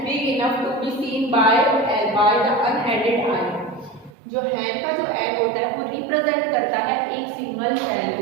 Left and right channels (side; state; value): left; drops out; at 4.1 s